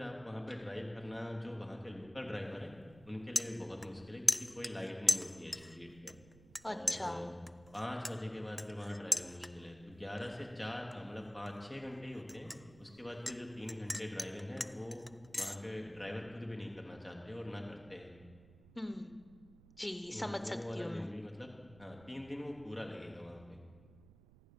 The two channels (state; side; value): noise; right; rumble, 21 dB below the sound